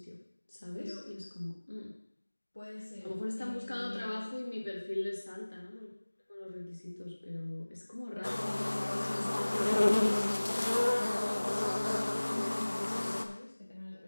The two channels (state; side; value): inverted; both; correlation -1.00